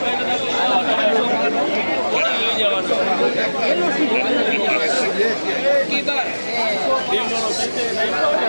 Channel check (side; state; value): both; inverted; correlation -1.00